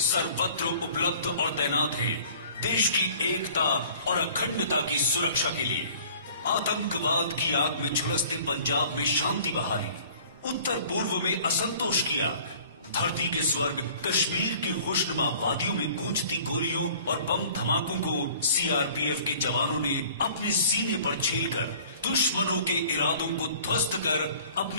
उपलब्ध और तैनात हैं देश की एकता और अखंडता की सुरक्षा के लिए। आतंकवाद की आग में झुलसते पंजाब में शांति बहाली, उत्तर पूर्व में असंतोष की आग, धरती के स्वर्ग कश्मीर की खुशनुमा वादियों में गूंजती गोलियों और बम धमाकों को सीआरपीएफ के जवानों ने अपने सीने पर झेलकर दुश्मनों के इरादों को ध्वस्त कर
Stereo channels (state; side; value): inverted; both; correlation -0.50